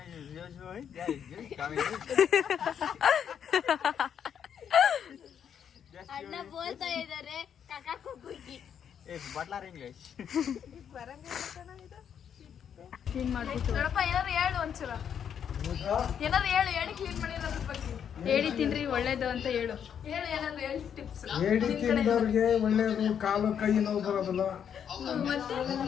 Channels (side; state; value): right; quieter; 8.3 dB